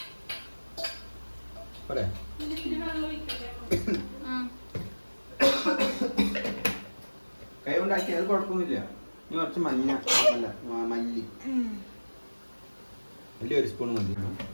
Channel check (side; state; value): both; inverted; correlation -1.00